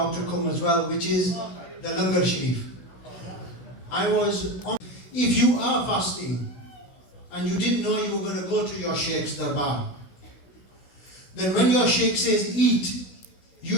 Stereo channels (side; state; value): right; late; 16 ms